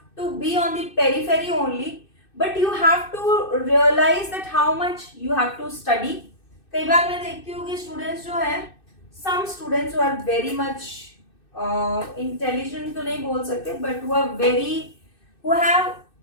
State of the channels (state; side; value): late; right; 2.6 ms